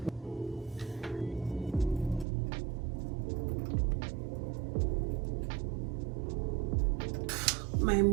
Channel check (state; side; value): drops out; left; at 2.2 s